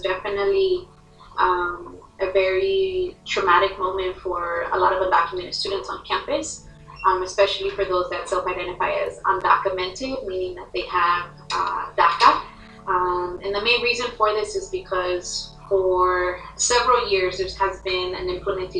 definitely a very traumatic moment for a lot of undocumented students on campus, especially for those that self-identify as undocumented, meaning that they have DACA. And the main reason for this is because for several years there has been an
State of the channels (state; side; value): identical; both; correlation 1.00